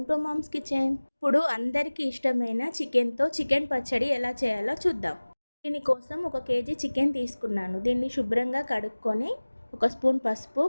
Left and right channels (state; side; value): inverted; both; correlation -1.00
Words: to mom's kitchen. ఇప్పుడు అందరికీ ఇష్టమైన చికెన్తో చికెన్ పచ్చడి ఎలా చేయాలో చూద్దాం. దీనికోసం 1 కేజీ చికెన్ తీసుకున్నాను. దీన్ని శుభ్రంగా కడుక్కొని 1 స్పూన్ పసుపు,